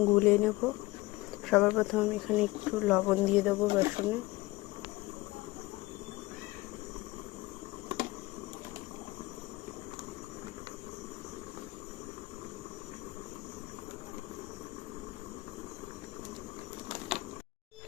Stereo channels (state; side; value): quieter; right; 20.4 dB